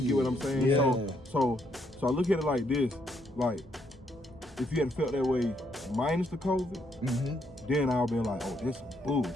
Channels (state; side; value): normal; both; correlation 0.73